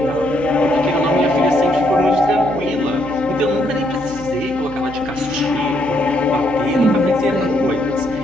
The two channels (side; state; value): right; noise; hum, 16 dB below the sound